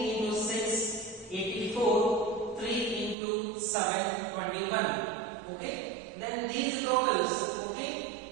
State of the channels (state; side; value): drops out; left; at 3.2 s